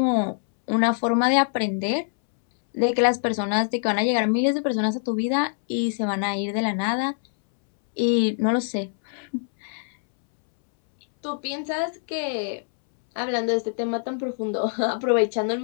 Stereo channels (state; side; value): silent; right; 62 dB below the other